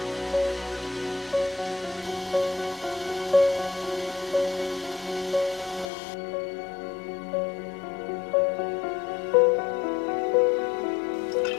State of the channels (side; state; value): right; drops out; at 5.9 s